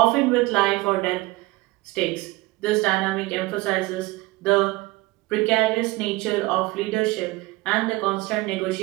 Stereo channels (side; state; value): left; quieter; 20.9 dB